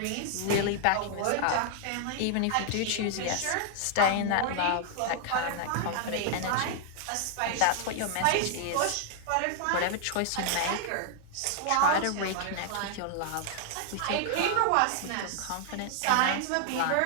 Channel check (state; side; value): different; both; correlation 0.00